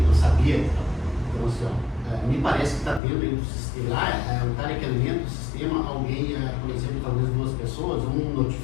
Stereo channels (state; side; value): drops out; right; at 3.0 s